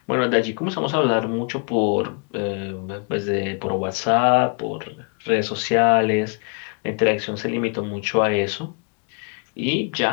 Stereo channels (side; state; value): right; quieter; 38.2 dB